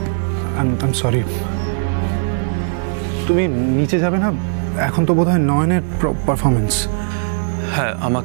I am sorry. তুমি নিচে যাবে না? এখন তো বোধহয় নয়নের পারফরমেন্স। হ্যাঁ,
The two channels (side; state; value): left; silent; 62 dB below the other